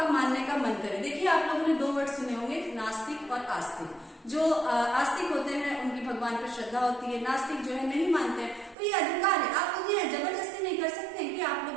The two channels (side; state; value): left; drops out; at 8.8 s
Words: मानने का मन करे। देखिए, आप लोगों ने 2 वर्ड सुने होंगे, नास्तिक और आस्तिक। जो आस्तिक होते हैं उनकी भगवान पर श्रद्धा होती है, नास्तिक जो है नहीं मानते हैं। तो ये अधिकार है, आप उन्हें जबरदस्ती नहीं कर सकते हैं कि आप लोग